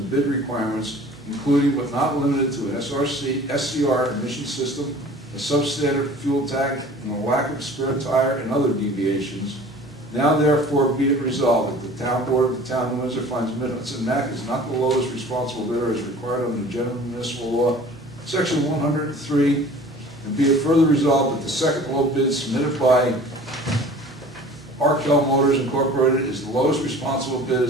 bid requirements, including but not limited to an SCR emission system, a substandard fuel tank, and a lack of spare tire and other deviations. Now therefore be it resolved that the town board of the town of Windsor finds Mid-Hudson Mac is not the lowest responsible bidder as required under the general municipal law, section 103, and be it further resolved that the second low bid submitted by Arkell Motors Incorporated is the lowest responsible bid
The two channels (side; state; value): both; normal; correlation 0.45